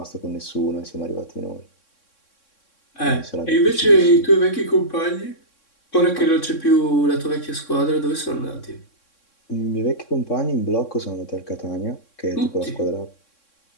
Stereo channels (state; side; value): late; right; 3.6 ms